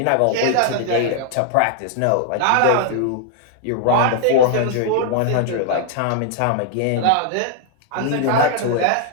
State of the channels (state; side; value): different; both; correlation 0.00